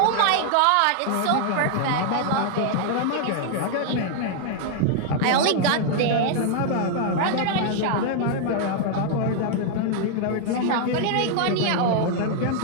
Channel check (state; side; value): different; both; correlation 0.00